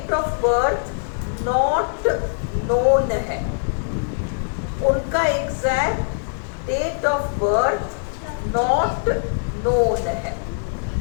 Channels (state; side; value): silent; right; 57 dB below the other